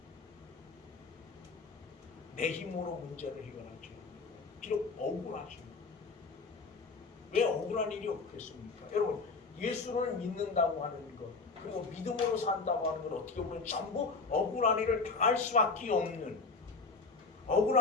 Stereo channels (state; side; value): quieter; right; 4.2 dB